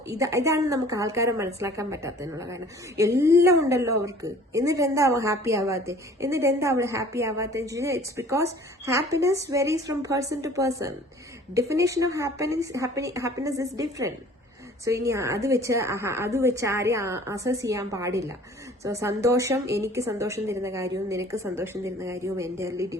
ഇതാണ് നമുക്ക് ആൾക്കാരെ മനസ്സിലാക്കാൻ പറ്റാത്തതിനുള്ള കാരണം. എല്ലാം ഉണ്ടല്ലോ അവർക്ക്, എന്നിട്ട് എന്താ അവൾ ഹാപ്പി ആവാത്തെ, എന്നിട്ട് എന്താ അവൾ ഹാപ്പി ആവാത്തെ? It's because happiness varies from person to person. Definition of happiness is different. So ഇനി അത് വെച്ച് ആരെയും അസസ് ചെയ്യാൻ പാടില്ല. സോ സന്തോഷം, എനിക്ക് സന്തോഷം തരുന്ന കാര്യവും നിനക്ക് സന്തോഷം തരുന്ന കാര്യവും എൻ്റയർലി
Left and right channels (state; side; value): normal; both; correlation 0.50